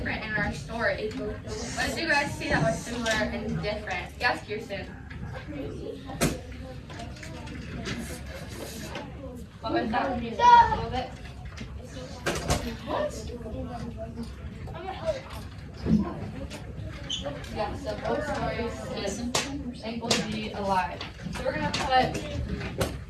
in our story? What did you guys see that was similar and different? Yes, Kirsten. What was that? Can you say that a little bit? Yeah, so both stories is thankful to be alive. So we're gonna put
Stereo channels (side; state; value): both; identical; correlation 1.00